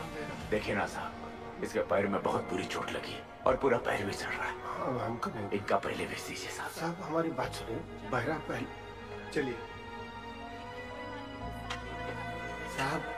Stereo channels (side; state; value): both; identical; correlation 1.00